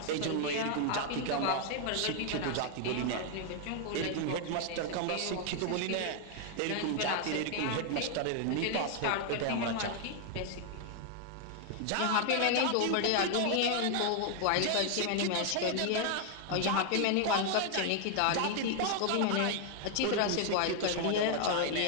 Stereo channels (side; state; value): both; different; correlation 0.00